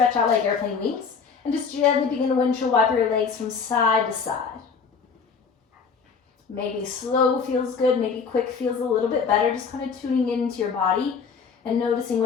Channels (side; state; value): right; quieter; 5.7 dB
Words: out like airplane wings. And just gently begin to windshield wiper your legs from side to side. Maybe slow feels good, maybe quick feels a little bit better. Just kind of tuning into your body and noticing